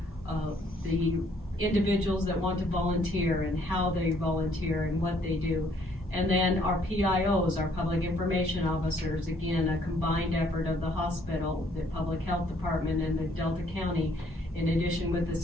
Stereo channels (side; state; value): both; normal; correlation 0.65